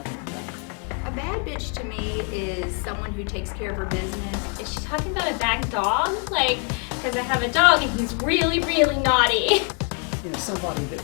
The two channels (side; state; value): right; quieter; 39.7 dB